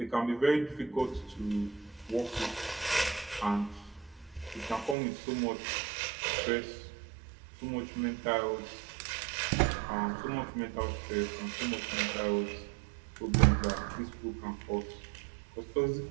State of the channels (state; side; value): drops out; left; at 5.0 s